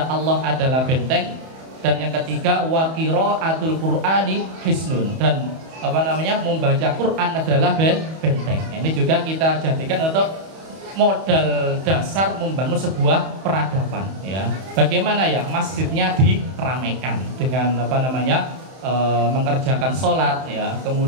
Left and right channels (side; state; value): left; late; 31 ms